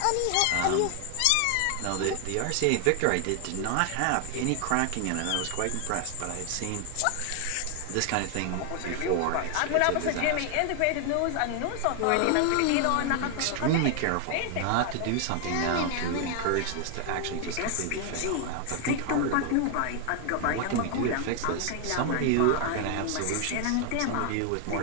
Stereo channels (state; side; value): different; both; correlation 0.00